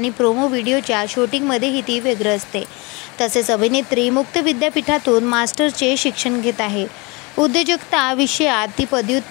प्रोमो व्हिडिओच्या शूटिंगमध्येही ती व्यग्र असते. तसेच अभिनेत्री मुक्त विद्यापीठातून मास्टरचे शिक्षण घेत आहे. उद्योजकता विषयात ती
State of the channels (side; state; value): right; quieter; 27.2 dB